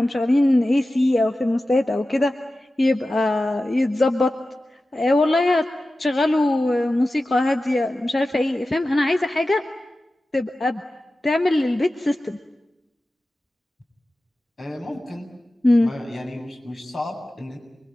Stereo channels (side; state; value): both; normal; correlation 0.95